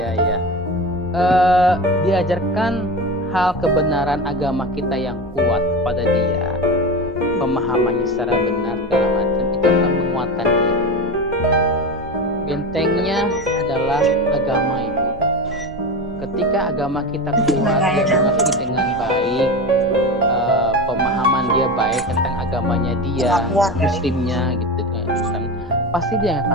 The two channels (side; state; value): right; noise; hum, 21 dB below the sound